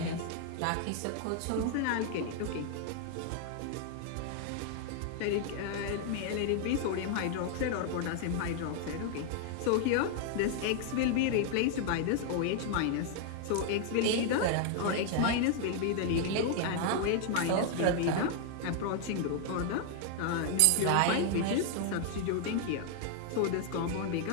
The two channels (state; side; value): different; both; correlation 0.00